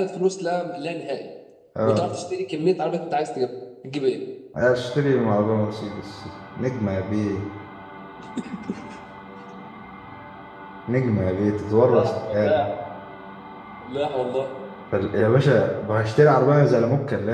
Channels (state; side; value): identical; both; correlation 1.00